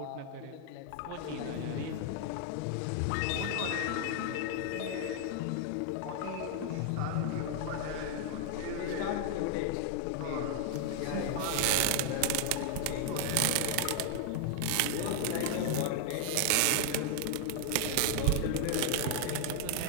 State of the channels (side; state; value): both; different; correlation 0.00